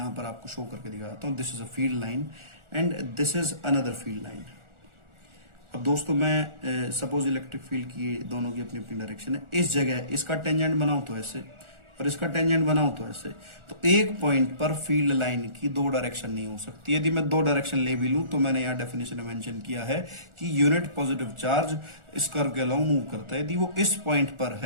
पर आपको शो करके दिखाता हूं, this is a field line and this is another field line. अब दोस्तों मैं सपोज इलेक्ट्रिक फील्ड की दोनों की अपनी अपनी डायरेक्शन है, इस जगह इसका टेंजेंट बनाऊं तो ऐसे और इसका टेंजेंट बनाऊं तो ऐसे, तो एक पॉइंट पर फील्ड लाइन की दो डायरेक्शन नहीं हो सकती। यदि मैं दो डायरेक्शन ले भी लूं तो मैंने यहाँ डेफिनेशन में मेंशन किया है कि यूनिट पॉजिटिव चार्ज इस कर्व के अलावा मूव करता है। यदि वो इस पॉइंट पर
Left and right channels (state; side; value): late; left; 1.4 ms